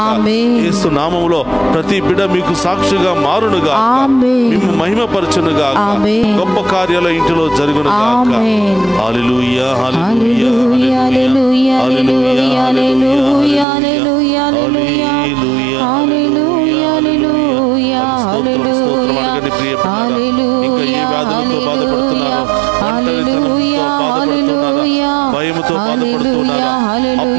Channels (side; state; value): left; drops out; at 13.7 s